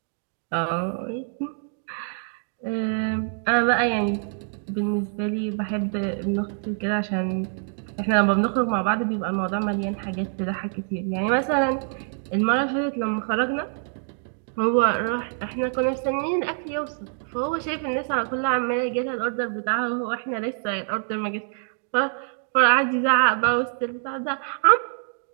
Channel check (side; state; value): left; silent; 62 dB below the other